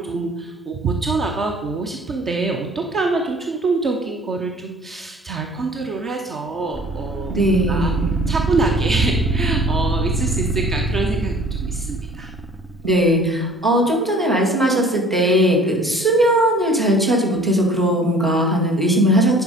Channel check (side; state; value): both; normal; correlation 0.50